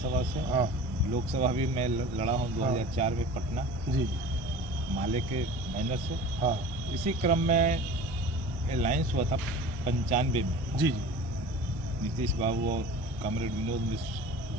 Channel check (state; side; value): normal; both; correlation 0.38